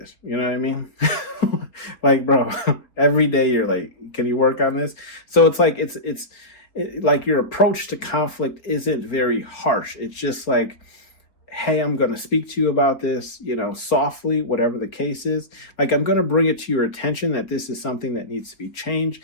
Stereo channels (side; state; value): right; late; 4.3 ms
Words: You know what I mean? Like, bro, every day you're like, can you work on this? So it's like, like your approach to conflict isn't very harsh. It's just like, hey, I'm going to speak to you about this, you know, softly, whatever the case is. Like, I'm going to bring it to your attention that this is something that needs to be changed,